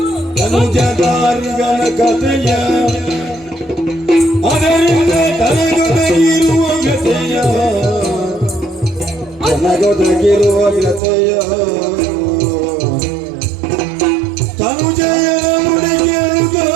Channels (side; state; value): left; drops out; at 11.0 s